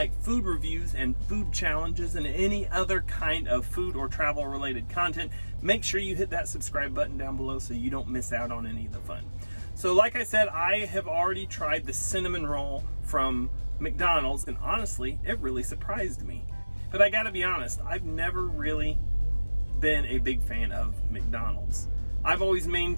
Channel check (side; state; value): both; inverted; correlation -1.00